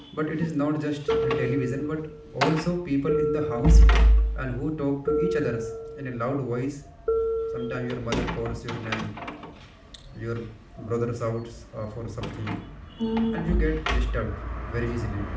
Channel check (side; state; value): both; identical; correlation 1.00